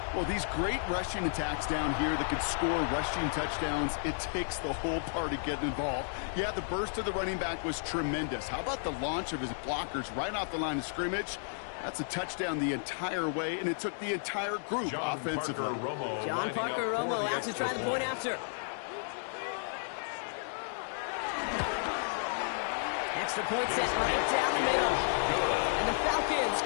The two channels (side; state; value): right; silent; digital silence